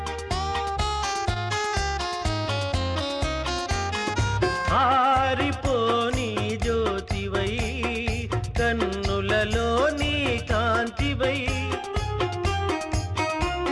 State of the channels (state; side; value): identical; both; correlation 1.00